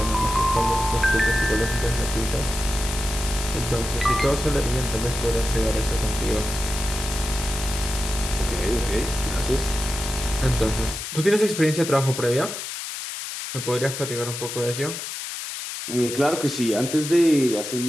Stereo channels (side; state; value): left; noise; hiss, 7 dB below the sound